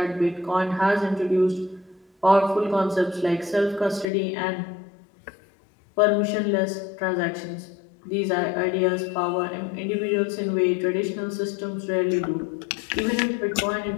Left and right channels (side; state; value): right; drops out; at 4.0 s